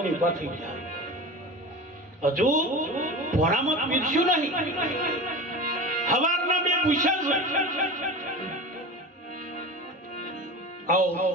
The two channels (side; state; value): both; normal; correlation 0.31